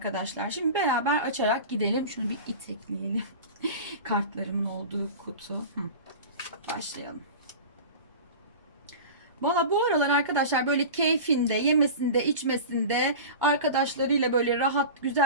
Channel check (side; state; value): both; inverted; correlation -0.33